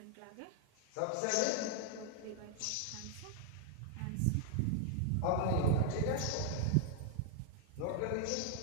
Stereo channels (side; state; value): both; different; correlation 0.00